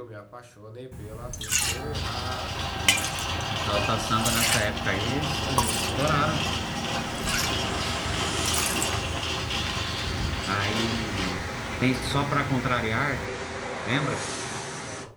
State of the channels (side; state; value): both; identical; correlation 1.00